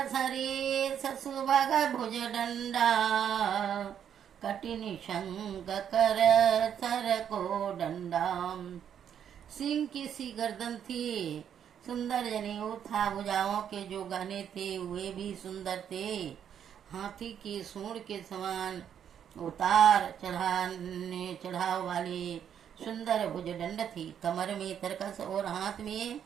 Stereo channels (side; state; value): left; quieter; 8.9 dB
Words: सरेस सुभग भुज दंडा, कटिनि शंख कर सर को डंडा। सिंह की सी गर्दन थी, सुंदर जनेऊ था। भुजाओं के जो गहने थे वे भी सुंदर थे। हाथी की सूंड के समान उतार चढ़ाव वाली सुंदर भुजदंड थी। कमर में तरकस और हाथ में